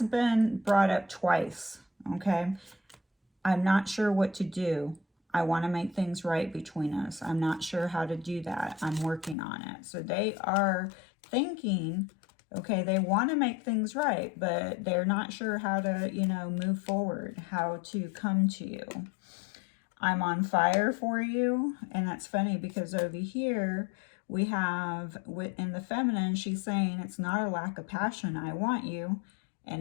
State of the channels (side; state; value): right; drops out; at 9.3 s